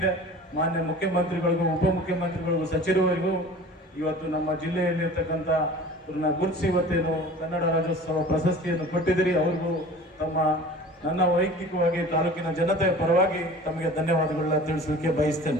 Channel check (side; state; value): both; normal; correlation 0.42